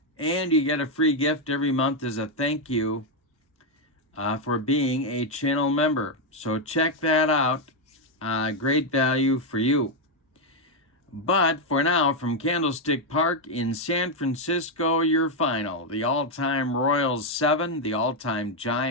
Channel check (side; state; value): both; normal; correlation 0.02